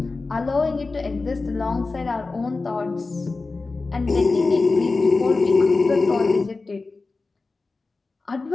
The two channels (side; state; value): right; quieter; 3.8 dB